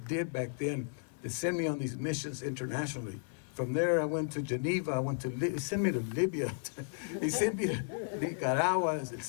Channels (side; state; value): right; silent; 55 dB below the other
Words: back then to send me on these missions internationally. From there, I went to Geneva. He sent me to Libya. He sent me to Nicaragua, El